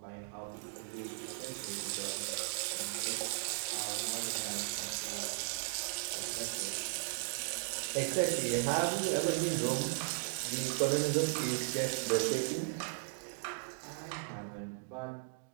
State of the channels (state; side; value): silent; left; digital silence